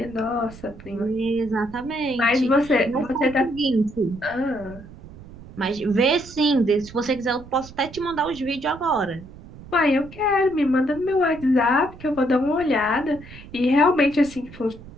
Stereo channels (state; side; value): noise; right; rumble, 18 dB below the sound